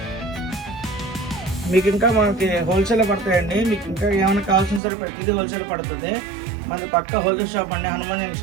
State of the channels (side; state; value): left; drops out; at 4.8 s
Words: మీకు ఇంకా మనకి హోల్సేల్ పడతాయండి, మీకు ఇంకా ఏమైనా కావాల్సిన సరే ప్రతిదీ హోల్సేల్ పడుతుంది. మన పక్క హోల్సేల్ షాప్ అండి, హనుమాన్